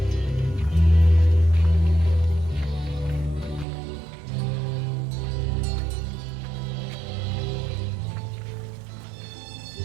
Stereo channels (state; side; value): drops out; left; at 3.7 s